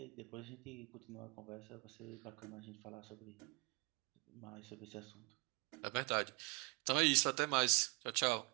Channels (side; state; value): left; quieter; 30.1 dB